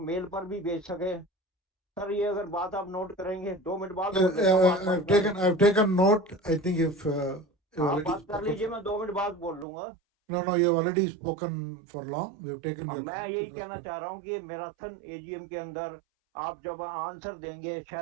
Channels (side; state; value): left; drops out; at 9.7 s